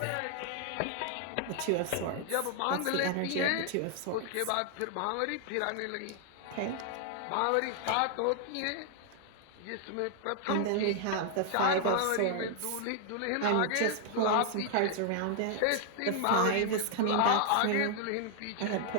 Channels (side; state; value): both; different; correlation 0.00